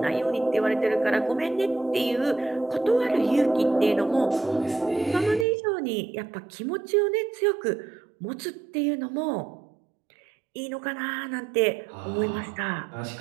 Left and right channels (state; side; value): drops out; left; at 5.5 s